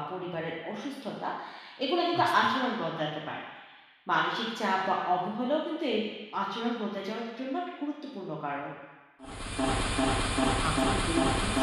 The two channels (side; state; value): both; identical; correlation 1.00